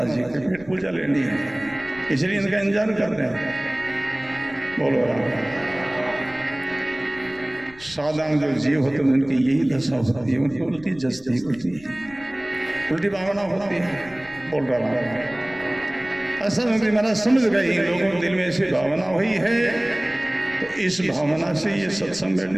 जी के पेट पूजा लेनी है, इसलिए इनका इंतजार कर रहे हैं। बोलो राम। साधारण जो जीव होते हैं उनकी यही दशा होती है, उनकी उल्टी जस्ती होती है, उल्टी भावना होती है। बोल रहा हूँ ऐसा महाराज समझ गए, इन लोगों के दिल में ऐसी भावना हुई है, तो इस भावना से ये सत्संग में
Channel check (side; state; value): left; noise; rumble, 22 dB below the sound